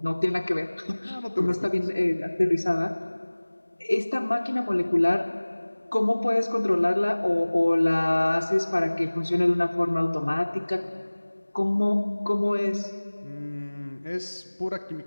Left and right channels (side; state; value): both; inverted; correlation -1.00